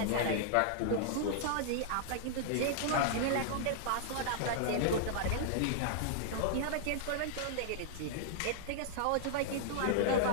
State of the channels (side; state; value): both; different; correlation -0.01